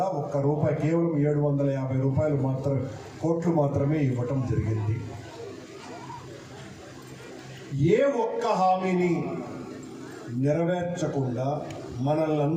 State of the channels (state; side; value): identical; both; correlation 1.00